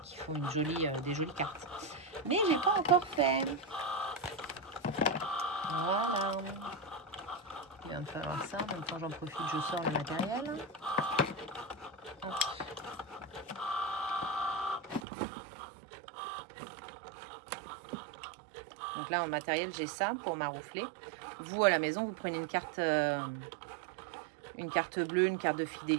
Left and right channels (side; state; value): left; drops out; at 15.0 s